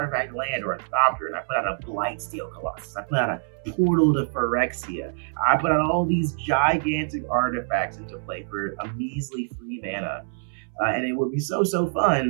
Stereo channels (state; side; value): silent; left; 62 dB below the other